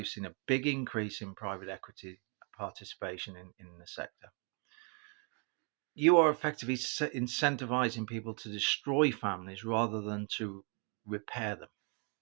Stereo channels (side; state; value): left; quieter; 37.1 dB